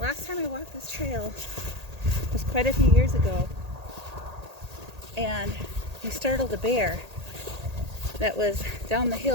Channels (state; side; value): late; left; 1.8 ms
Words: time I walked this trail was quite a few years ago. And we startled a bear that was down the